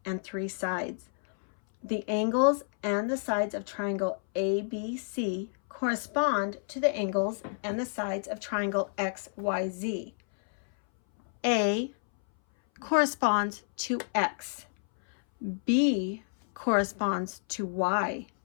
and 3 sides. The angles and the sides of triangle ABC correspond to the angles and the sides of triangle XYZ. A corresponds to X. B corresponds to Y.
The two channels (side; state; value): right; silent; 58 dB below the other